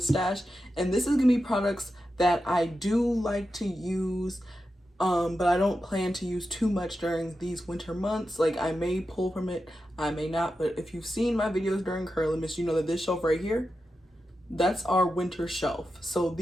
stash, and this is gonna be products that I do like to use, but I don't plan to use too much during these winter months. Like, I may pull from it, I may not. But if you've seen my videos during Curlimus, you know that this shelf right here, that's our winter shelf. So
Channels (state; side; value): normal; both; correlation 0.90